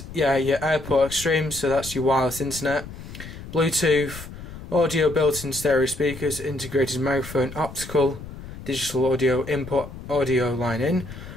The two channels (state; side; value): noise; left; rumble, 13 dB below the sound